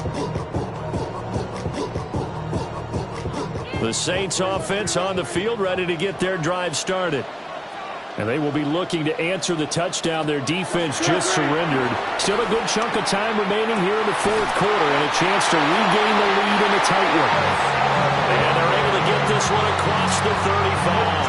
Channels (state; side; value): identical; both; correlation 1.00